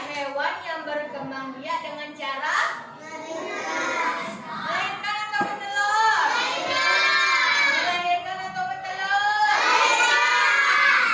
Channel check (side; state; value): both; identical; correlation 1.00